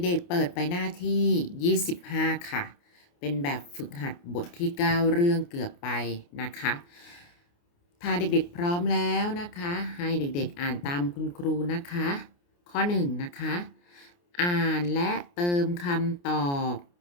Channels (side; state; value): right; late; 29 ms